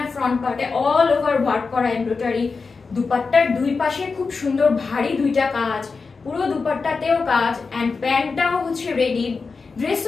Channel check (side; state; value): right; quieter; 4.6 dB